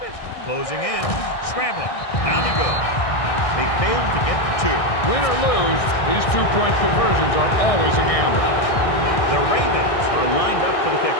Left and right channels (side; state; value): right; late; 1.6 ms